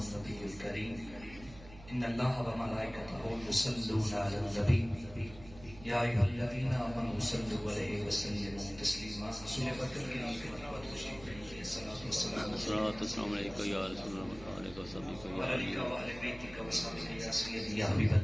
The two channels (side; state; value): right; noise; hum, 18 dB below the sound